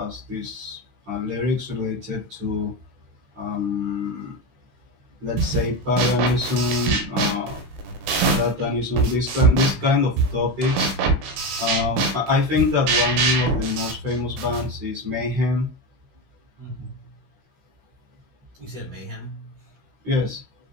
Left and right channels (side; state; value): left; late; 16 ms